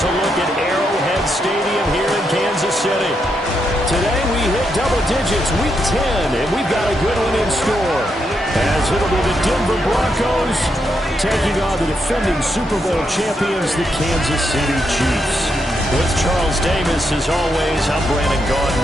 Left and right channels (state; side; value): normal; both; correlation 0.81